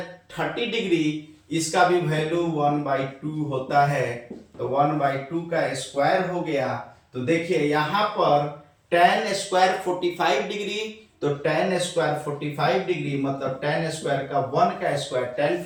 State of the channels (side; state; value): both; identical; correlation 1.00